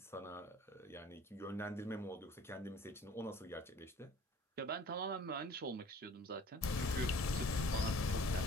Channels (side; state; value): both; normal; correlation 0.50